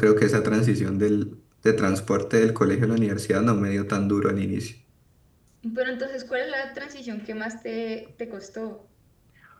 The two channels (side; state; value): both; identical; correlation 1.00